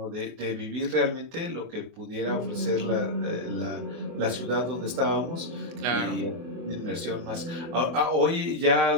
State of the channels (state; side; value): late; left; 24 ms